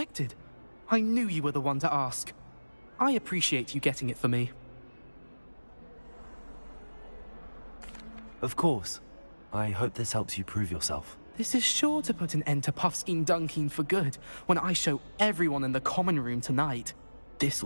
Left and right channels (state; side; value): inverted; both; correlation -1.00